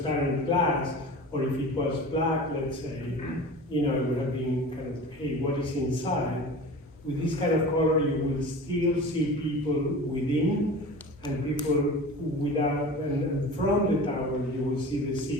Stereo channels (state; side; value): normal; both; correlation 0.36